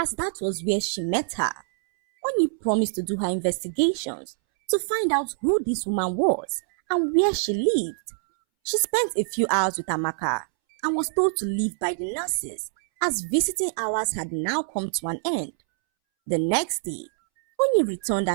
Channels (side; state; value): left; silent; 62 dB below the other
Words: that was where she met her. Oni promised to do her investigations to find out who this woman was and where she lived. She spent a few hours with Amaka and was told to leave by the nurses, as visiting hours had now come to an end. The next day, Oni returned